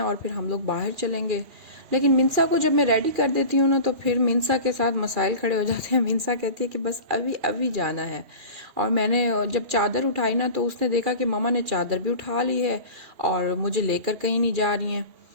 और फिर हम लोग बाहर चलेंगे। लेकिन मिनसा को जब मैं रेडी कर देती हूँ ना तो फिर मिनसा के साथ मसाइल खड़े हो जाते हैं। मिनसा कहती है कि बस अभी अभी जाना है। और मैंने जब चादर उठाई ना तो उसने देखा कि मामा ने चादर भी उठा ली है और मुझे लेकर कहीं नहीं जा रही हैं।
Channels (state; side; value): late; left; 2.4 ms